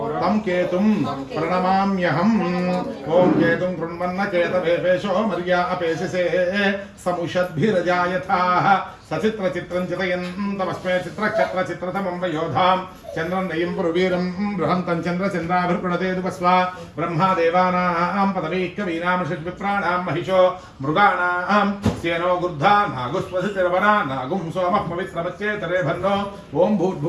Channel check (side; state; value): both; identical; correlation 1.00